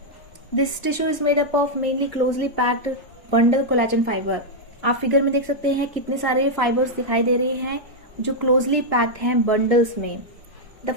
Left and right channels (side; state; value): both; normal; correlation -0.03